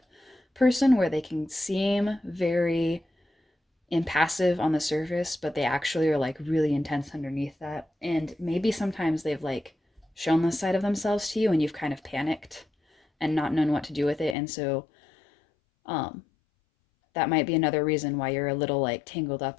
person, where they can seem very impassive on the surface, but they actually are like really intense underneath that. And maybe sometimes they've like shown this side of themselves to you and you've kind of panicked and not known what to do with it. And so um that might be another reason why you're a little like tangled up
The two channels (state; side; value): drops out; right; at 14.4 s